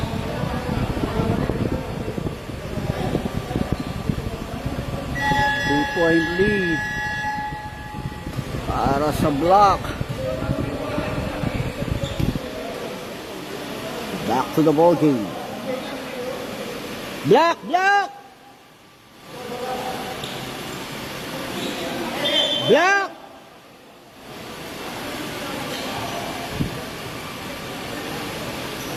Point lead para sa block. Back to the ball game. Block, block, block.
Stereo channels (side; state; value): both; identical; correlation 1.00